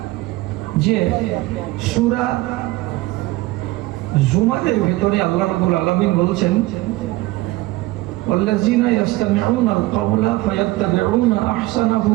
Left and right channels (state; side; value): quieter; left; 19.1 dB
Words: যে সূরা জুমারের ভেতরে আল্লাহ রাব্বুল আলামিন বলছেন, ওয়াল্লাযিনা ইয়াসতামিউনা আল কাওলা ফায়াত্তাবিউনা আহসানাহু